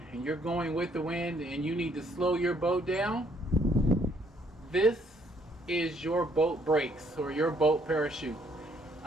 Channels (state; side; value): normal; both; correlation 0.67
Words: and you're going with the wind and you need to slow your boat down, this is your boat brakes or your boat parachute.